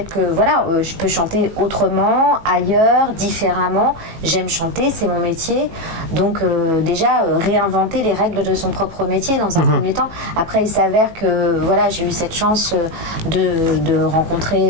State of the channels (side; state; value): left; late; 18 ms